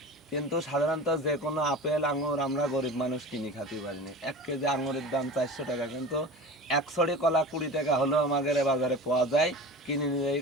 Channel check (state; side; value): normal; both; correlation 0.34